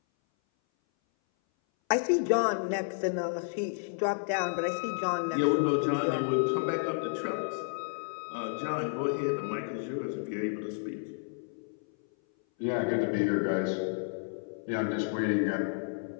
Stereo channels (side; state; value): right; silent; 57 dB below the other